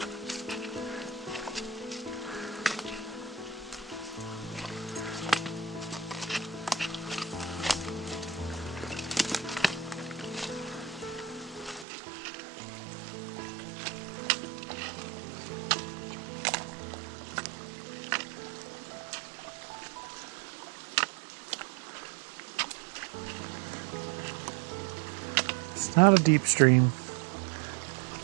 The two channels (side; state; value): left; drops out; at 11.9 s